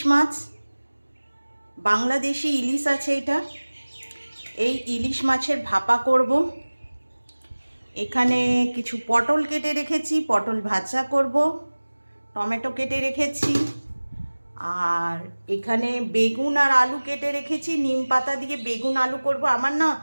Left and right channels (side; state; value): both; inverted; correlation -1.00